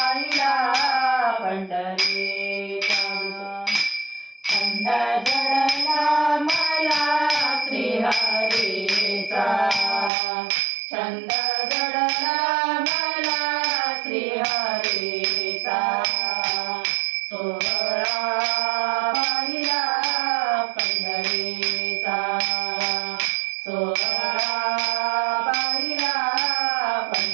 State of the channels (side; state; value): left; drops out; at 10.1 s